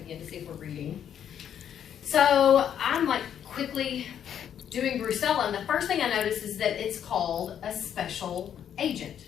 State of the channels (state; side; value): quieter; right; 9.3 dB